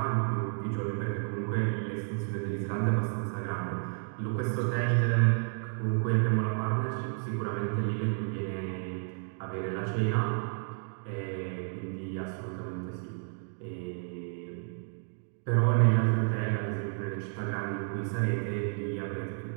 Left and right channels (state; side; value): silent; left; 57 dB below the other